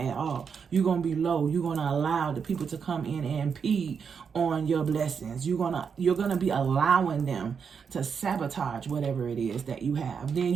at all. You're going to be low. You're going to allow the people to come in and impede on your blessings. You're going to be allowing them to sabotage whatever it is that you have. Then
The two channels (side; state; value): left; quieter; 6.4 dB